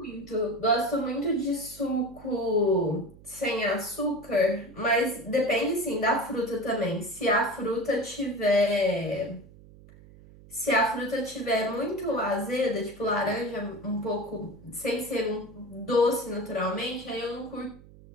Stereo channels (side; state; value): right; noise; hum, 21 dB below the sound